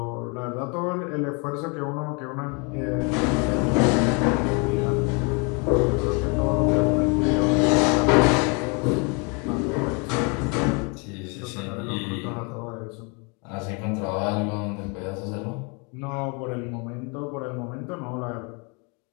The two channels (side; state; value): right; quieter; 32.9 dB